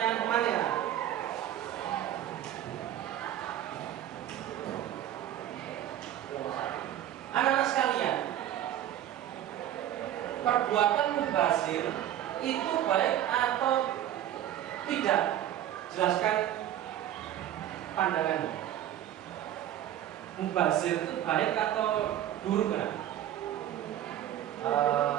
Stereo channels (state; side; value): quieter; left; 11.8 dB